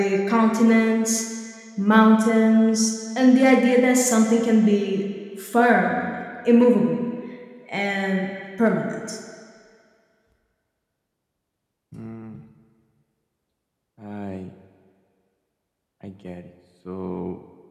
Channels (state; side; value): identical; both; correlation 1.00